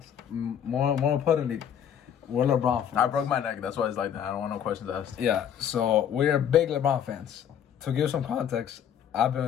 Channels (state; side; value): quieter; right; 8.9 dB